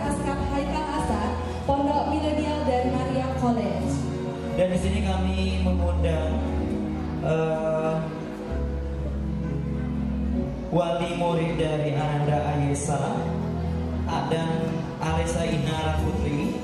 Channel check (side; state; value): both; identical; correlation 1.00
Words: Haikal Hasan, Pondok Milenial dan Maria College. dan di sini kami mengundang wali murid dari Ananda Ayesa dan Alisa Inara Putri,